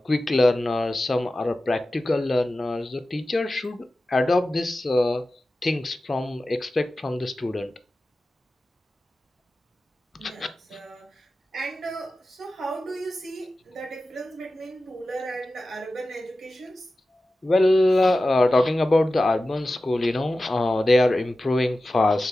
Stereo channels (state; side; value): normal; both; correlation 0.94